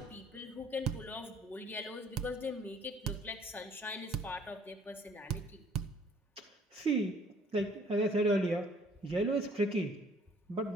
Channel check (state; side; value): normal; both; correlation 0.58